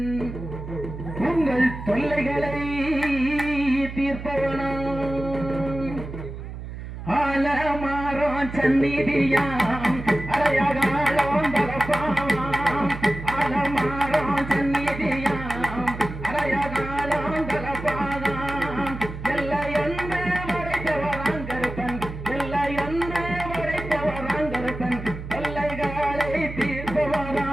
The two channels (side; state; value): right; noise; hum, 9 dB below the sound